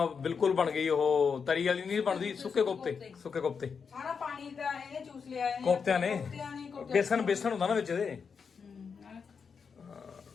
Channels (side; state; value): right; quieter; 5.9 dB